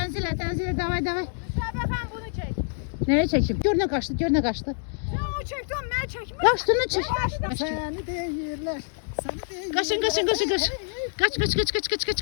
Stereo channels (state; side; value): silent; right; digital silence